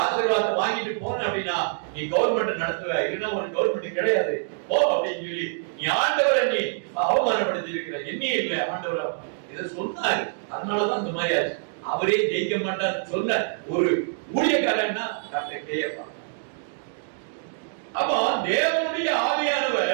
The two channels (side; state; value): left; silent; digital silence